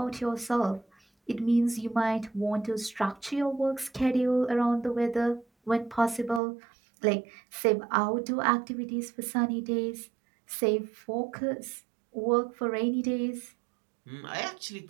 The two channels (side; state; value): left; drops out; at 6.4 s